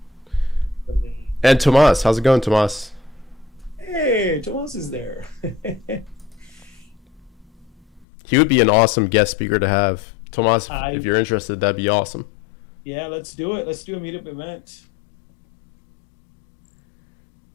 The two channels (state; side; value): drops out; right; at 8.1 s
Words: And Tomas. How's it going, Tomas? Hey, Tomas is there. He would be an awesome guest speaker to have. Tomas, if you're interested, that'd be awesome. Yeah, let's do it. Let's do a meetup event.